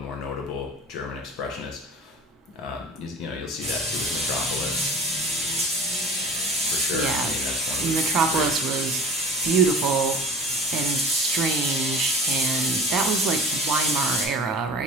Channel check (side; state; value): both; normal; correlation 0.40